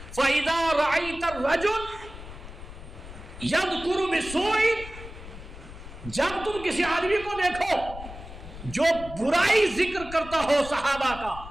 فَإِذَا رَأَيْتَ الرَّجُلَ يَذْكُرُ بِسُوءٍ، جب تم کسی آدمی کو دیکھو جو برائی ذکر کرتا ہو صحابہ کا،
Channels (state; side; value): noise; left; rumble, 13 dB below the sound